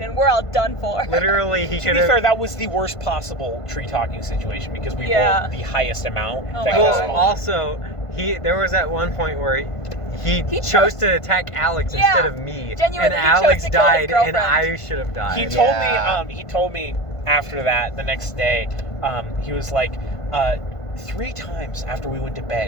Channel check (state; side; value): late; right; 1.5 ms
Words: and we're all done for. Literally, he To could be fair, have. that was the worst possible tree talking situation because we Yeah. rolled the highest amount. Oh that my got God. Well, spawned. also, there was at one point where he He chose chose- to attack Alex Yeah, instead of me, genuinely, and he chose Alex to kill his died, and girlfriend. I should have died. He told me after that the next day, he was like, 3 times after we went to